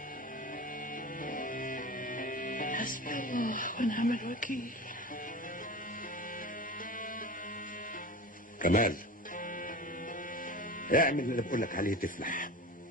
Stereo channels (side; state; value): both; normal; correlation 0.32